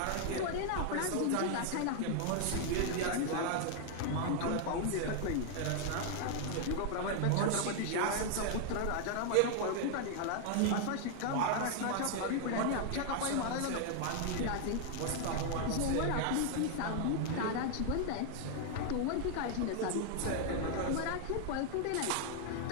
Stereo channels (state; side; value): different; both; correlation 0.00